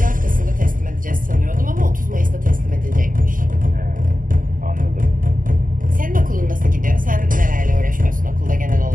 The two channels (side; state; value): left; late; 0.40 ms